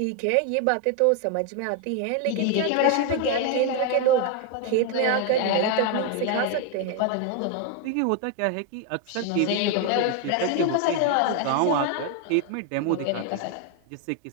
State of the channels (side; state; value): both; different; correlation 0.01